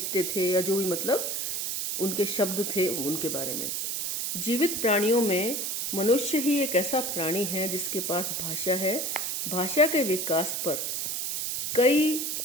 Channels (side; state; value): right; noise; hiss, 1 dB below the sound